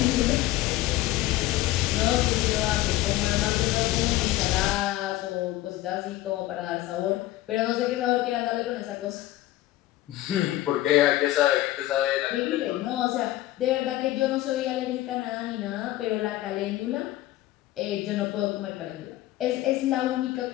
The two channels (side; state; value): right; quieter; 15.9 dB